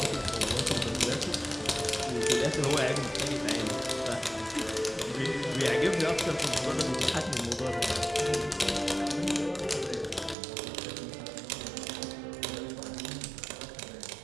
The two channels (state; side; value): drops out; left; at 10.4 s